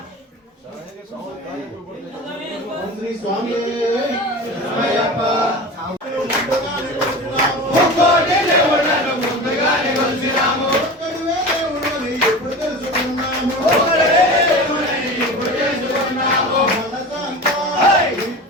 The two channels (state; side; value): normal; both; correlation 0.32